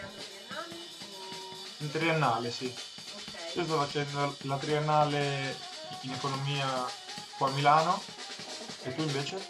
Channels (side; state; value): both; identical; correlation 1.00